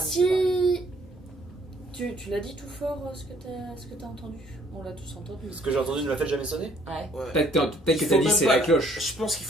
si... Tu l'as dit tout fort ce que t'as entendu? On l'a tous entendu. Ce que j'ai entendu ne l'a fait jamais sonner. Ouais. Ouais. Peut-être que Il t'as faut dit même c'est pas la cloche. Je pense qu'il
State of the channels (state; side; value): normal; both; correlation 0.62